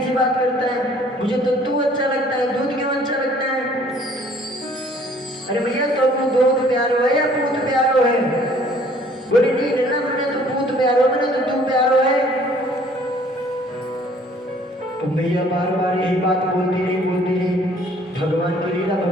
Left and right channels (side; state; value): both; normal; correlation 0.57